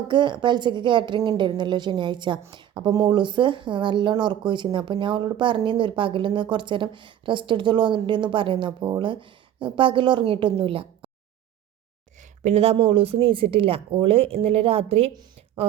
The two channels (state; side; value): quieter; left; 11.1 dB